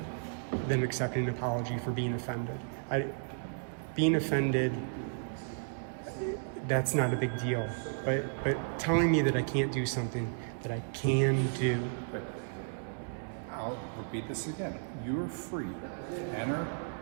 accepting an apology for being offended. Being offended, that's not a big deal. But telling me that I can't do something that I can do. But I'll repeat this again. You are free to enter,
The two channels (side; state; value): left; silent; digital silence